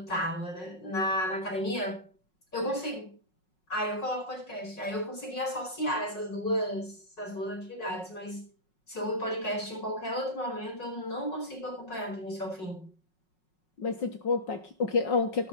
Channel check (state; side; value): late; right; 5.4 ms